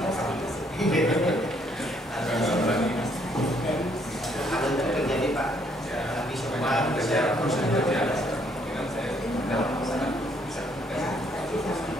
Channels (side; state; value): both; normal; correlation 0.68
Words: Pak. Tapi semua bisa